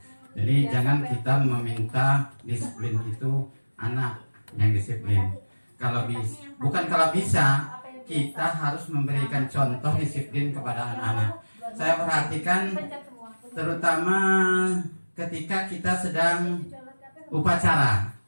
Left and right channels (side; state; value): both; inverted; correlation -1.00